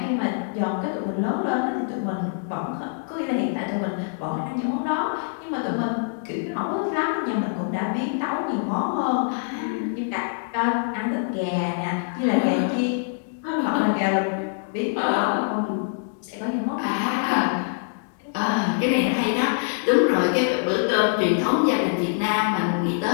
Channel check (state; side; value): silent; right; digital silence